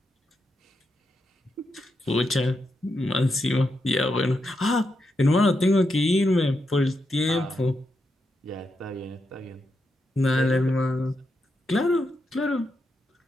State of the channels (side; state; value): both; normal; correlation 0.84